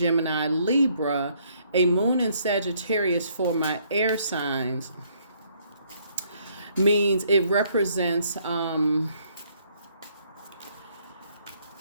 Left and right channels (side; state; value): both; inverted; correlation -0.67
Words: Libra, a moon in Sagittarius for my air signs means it represents,